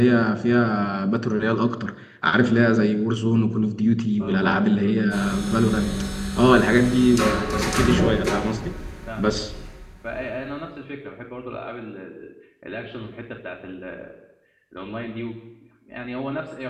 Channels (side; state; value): both; identical; correlation 1.00